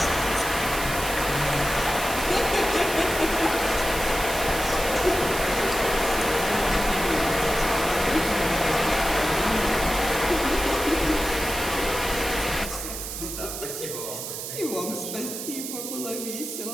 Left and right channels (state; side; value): noise; right; hiss, 7 dB below the sound